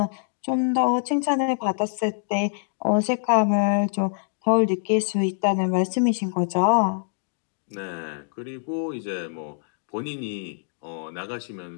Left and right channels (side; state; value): right; silent; digital silence